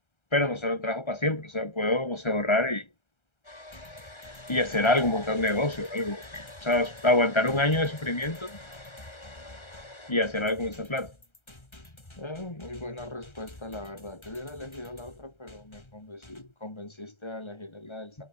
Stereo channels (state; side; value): late; right; 1.3 ms